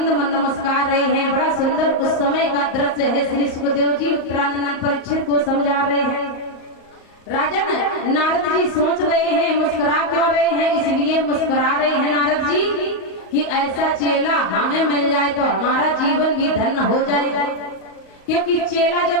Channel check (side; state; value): right; late; 38 ms